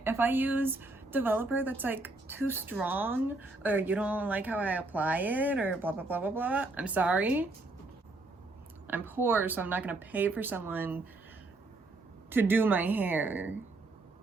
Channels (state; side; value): quieter; left; 3.1 dB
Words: If I use developer that's like too strong or you don't like how I apply it or blah, blah, blah, blah, blah, I'm sorry. I'm poor, so I'm not gonna pay for someone to do my hair,